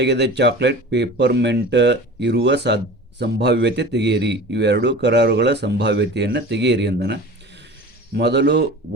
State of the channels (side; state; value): both; normal; correlation 0.37